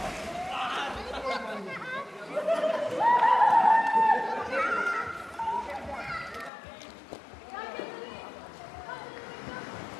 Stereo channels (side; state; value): right; drops out; at 6.5 s